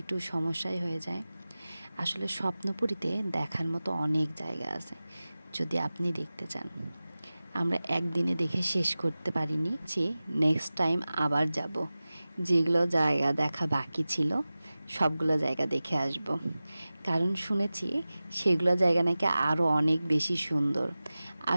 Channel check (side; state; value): both; inverted; correlation -0.97